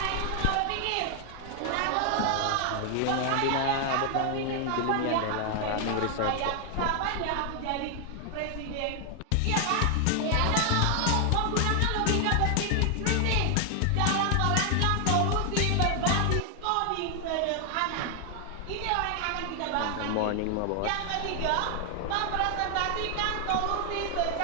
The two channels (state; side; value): different; both; correlation 0.00